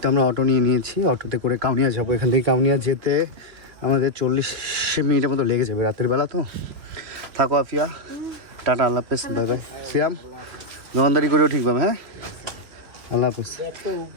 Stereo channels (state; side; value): late; left; 3.1 ms